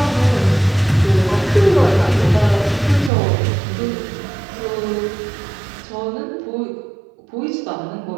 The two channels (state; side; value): drops out; left; at 3.1 s